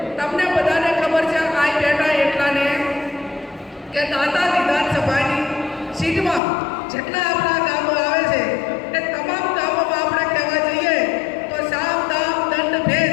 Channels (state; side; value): drops out; right; at 6.4 s